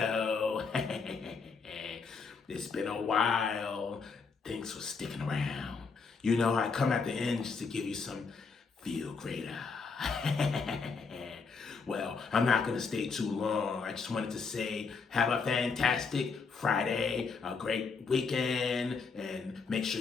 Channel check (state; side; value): quieter; right; 5.0 dB